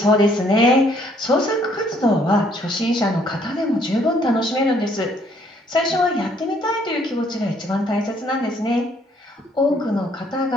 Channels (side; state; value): both; normal; correlation 0.65